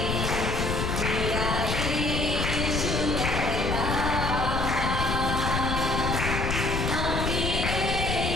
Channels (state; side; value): noise; left; rumble, 1 dB below the sound